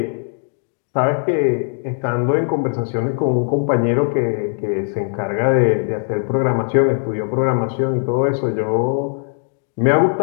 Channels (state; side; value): silent; right; 59 dB below the other